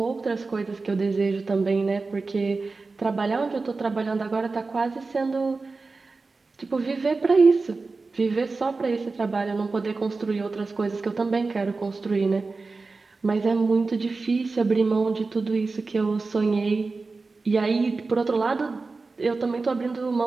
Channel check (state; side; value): quieter; left; 3.9 dB